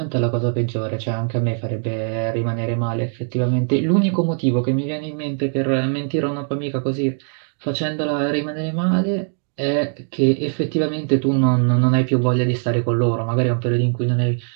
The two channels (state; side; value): silent; left; 57 dB below the other